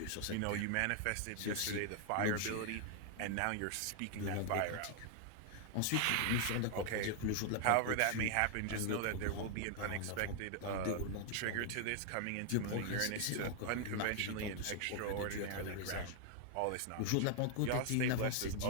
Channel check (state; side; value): different; both; correlation 0.00